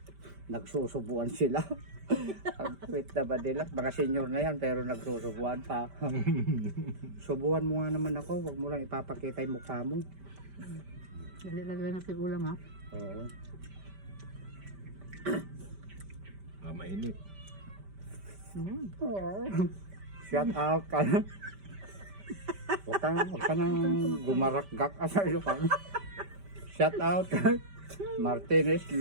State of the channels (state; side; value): late; left; 5.1 ms